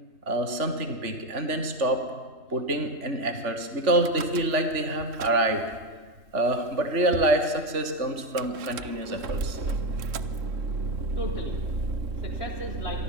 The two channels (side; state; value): left; late; 3.2 ms